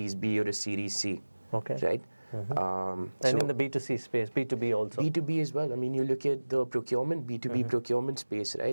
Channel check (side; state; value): both; inverted; correlation -1.00